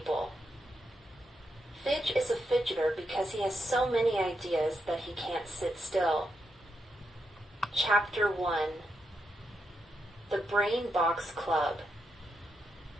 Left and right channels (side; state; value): both; normal; correlation 0.83